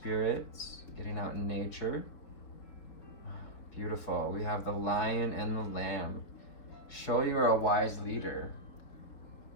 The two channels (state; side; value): late; right; 4.6 ms